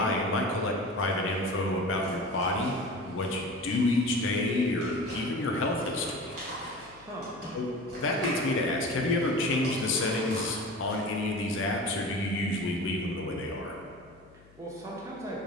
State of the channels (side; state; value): left; noise; hum, 26 dB below the sound